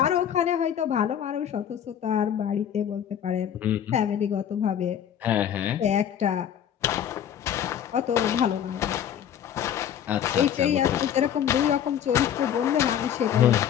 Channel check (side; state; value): right; quieter; 9.5 dB